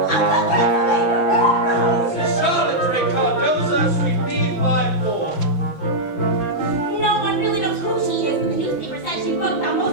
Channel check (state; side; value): late; right; 5.9 ms